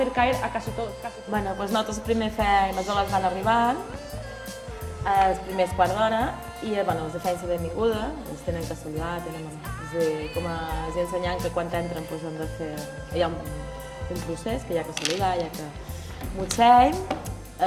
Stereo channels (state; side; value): identical; both; correlation 1.00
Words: caer a casi todos. Nosaltres primer fem, els homes van arribant, els primers quart d'hora, i els feien la benvinguda, els tenen que saludar, com els ensenyant que quan entren han de fer... Hi ha un procés que hi ha que saludar, hi ha que motsem,